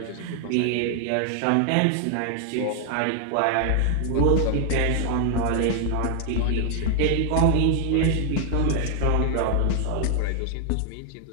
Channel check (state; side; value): different; both; correlation 0.00